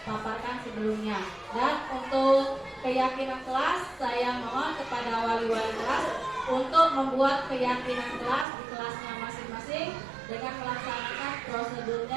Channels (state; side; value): drops out; left; at 8.5 s